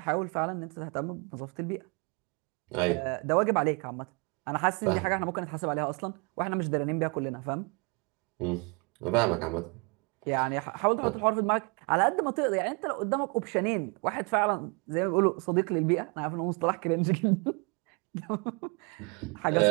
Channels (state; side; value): quieter; left; 31.6 dB